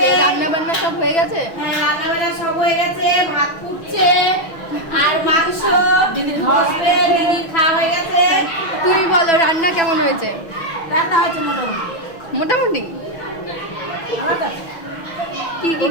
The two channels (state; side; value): late; right; 6.1 ms